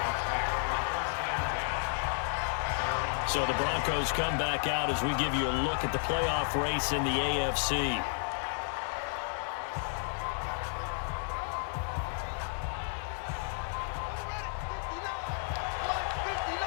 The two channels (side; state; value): right; silent; 56 dB below the other